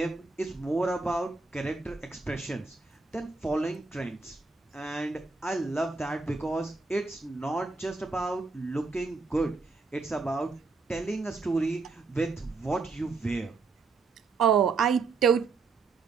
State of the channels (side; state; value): left; quieter; 4.2 dB